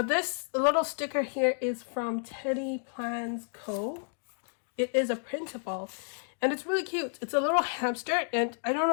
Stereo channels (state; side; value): silent; right; 57 dB below the other